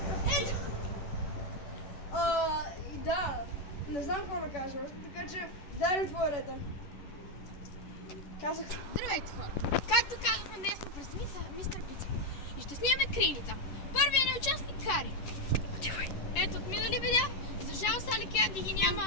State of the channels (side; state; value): right; late; 11 ms